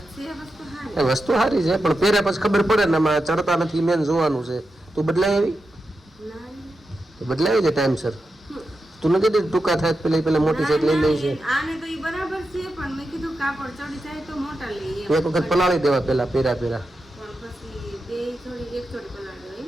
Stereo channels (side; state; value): both; normal; correlation 0.89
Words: છે વસ્તુ હારી. એ વસ્તુ સારી છે પણ પહેર્યા પછી ખબર પડે ને આમાં ચડતા નથી મેન જોવાનું છે. તું બદલાઈ આવી તો બદલાવી છે ટાઈમસર તું નથી કીધું ટૂંકા થાય પેલા મોટી સેટ લઈ લઈ છે આને તો ઈ બરાબર છે પણ મેં કીધું કાપડ ચડી જાય તો મોટા લઈએ. એક વખત પલાળી દેવા પેલા પહેર્યા પણ પછી બે જોડી એક જોડી પલાળી હોય